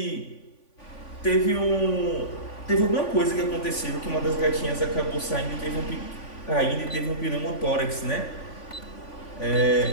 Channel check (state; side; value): late; right; 3.5 ms